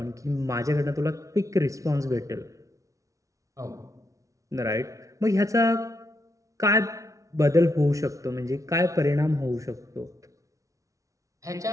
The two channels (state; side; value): late; left; 0.16 ms